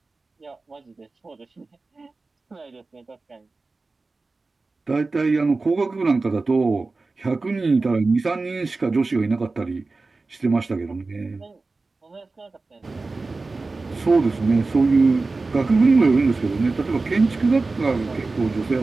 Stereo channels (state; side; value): quieter; left; 3.6 dB